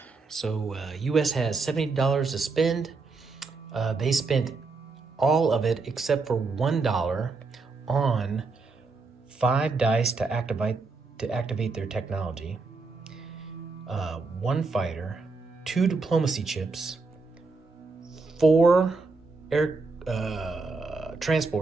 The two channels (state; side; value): quieter; left; 4.1 dB